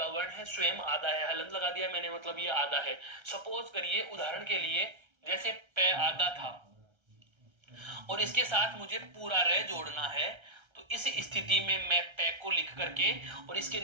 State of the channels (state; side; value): late; left; 1.3 ms